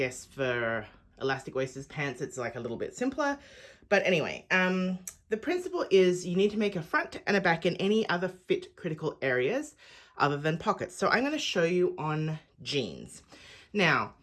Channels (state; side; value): identical; both; correlation 1.00